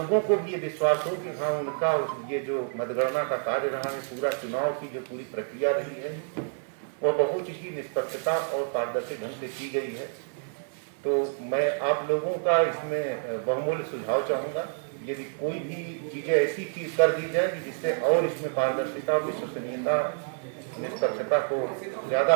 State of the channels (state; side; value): silent; left; 57 dB below the other